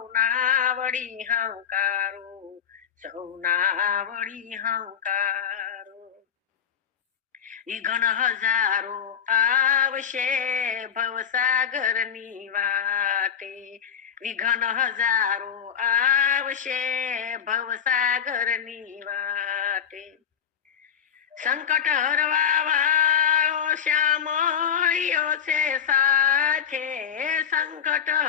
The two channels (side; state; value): right; quieter; 8.0 dB